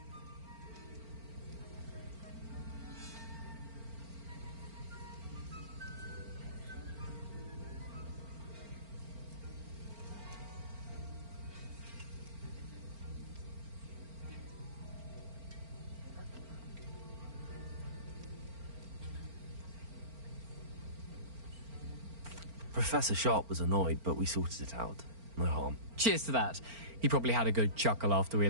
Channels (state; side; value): late; left; 4.4 ms